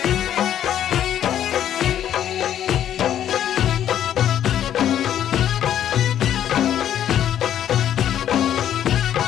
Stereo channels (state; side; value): quieter; right; 10.6 dB